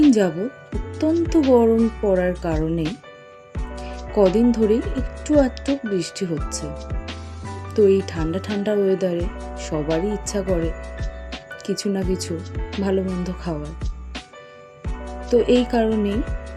যাবৎ অত্যন্ত গরম পড়ার কারণে কদিন ধরেই একটু আধটু বৃষ্টি হচ্ছে। তো এই ঠান্ডা ঠান্ডা ওয়েদারে সবারই ইচ্ছা করে কিছু না কিছু ভালো মন্দ খাওয়ার। তো এই কারণেই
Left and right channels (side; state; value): both; identical; correlation 1.00